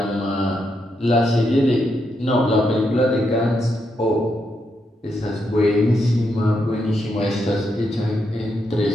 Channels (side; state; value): both; normal; correlation 0.81